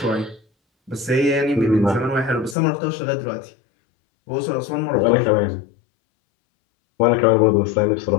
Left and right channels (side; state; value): right; drops out; at 2.6 s